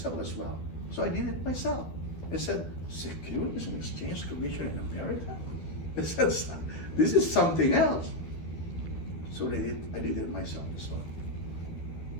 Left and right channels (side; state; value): right; late; 12 ms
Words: as well, so I did it myself. I said, Securities and Exchange Commission in America? I said, this is something else. So I did it myself as well.